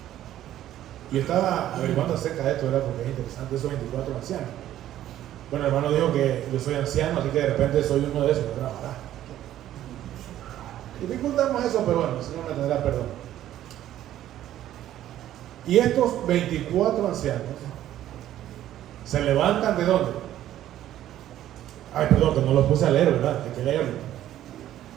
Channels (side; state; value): left; quieter; 12.6 dB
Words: Y estaba averiguando acerca de esto, ¿verdad? Porque es interesante esos 24 ancianos. Bueno, el hermano dijo que yo soy anciano, así que de repente soy uno de esos, ¿verdad? Dificultamos eso, pero bueno, el Señor me tendrá perdón. Y estos 24 ancianos se levantan ¿de dónde? Ay, perdón, que no los puse a leer, ¿verdad? Hay que leerlo.